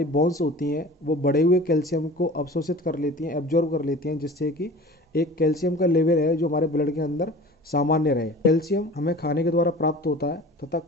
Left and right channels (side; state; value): both; normal; correlation 0.40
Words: बोन्स होती हैं वो बढ़े हुए कैल्शियम को अवशोषित कर लेती हैं, एब्जॉर्ब कर लेती हैं, जिससे कि एक कैल्शियम का लेवल है जो हमारे ब्लड के अंदर सामान्य रहे। कैल्शियम हमें खाने के द्वारा प्राप्त होता है तथा